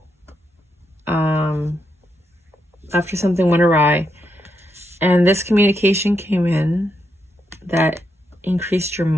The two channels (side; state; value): both; normal; correlation 0.82